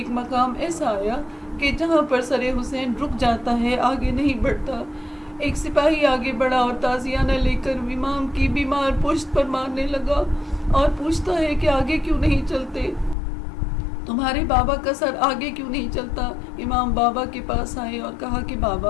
مقام ایسا آیا کہ جہاں پر سر حسین رک جاتا ہے، آگے نہیں بڑھتا. ایک سپاہی آگے بڑھا اور تازیانہ لے کر امام کی بیمار پشت پر مارنے لگا اور پوچھتا ہے کہ آگے کیوں نہیں چلتے، تمہارے بابا کا سر آگے کیوں نہیں چلتا. امام بابا کے پاس آئے اور کہا کہ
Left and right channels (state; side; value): drops out; right; at 13.2 s